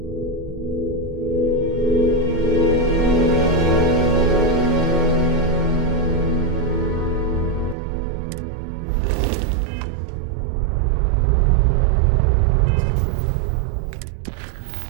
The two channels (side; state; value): left; drops out; at 7.8 s